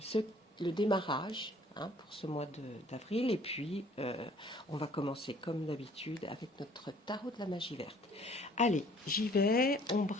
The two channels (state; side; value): normal; both; correlation 0.56